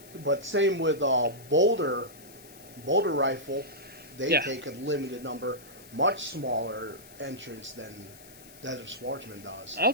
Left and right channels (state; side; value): noise; left; hiss, 20 dB below the sound